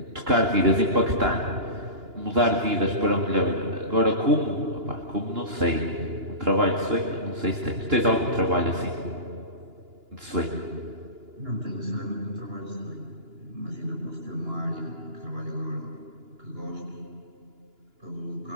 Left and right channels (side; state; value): left; late; 2.9 ms